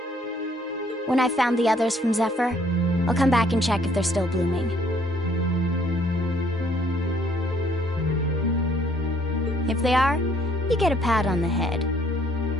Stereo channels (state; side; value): normal; both; correlation 0.64